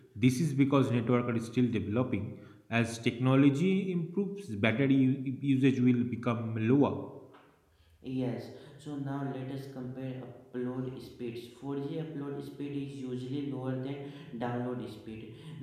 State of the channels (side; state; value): both; identical; correlation 1.00